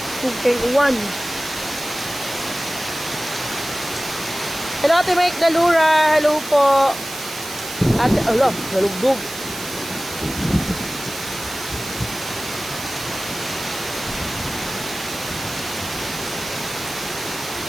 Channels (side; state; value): right; noise; hiss, 10 dB below the sound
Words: Okay, uwan. Hello, Ate Mike Dalura. Hello po. Ate, ala, nalugdog.